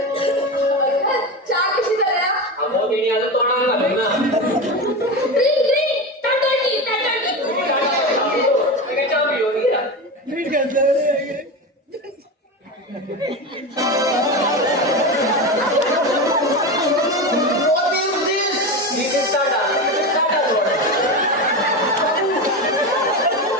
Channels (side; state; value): both; normal; correlation 0.21